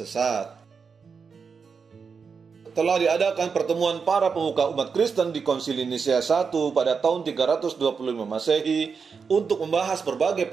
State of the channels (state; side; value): quieter; left; 5.6 dB